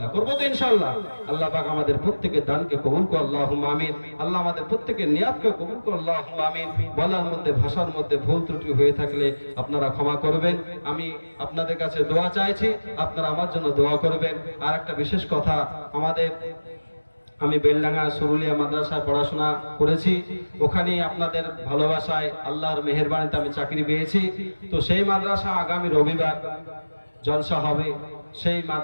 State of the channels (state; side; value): inverted; both; correlation -1.00